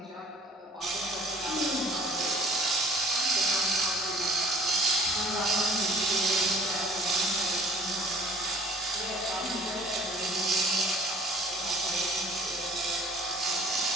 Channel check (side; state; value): both; normal; correlation 0.51